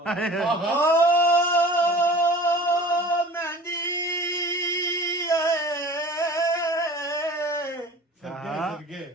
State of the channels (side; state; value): both; normal; correlation 0.42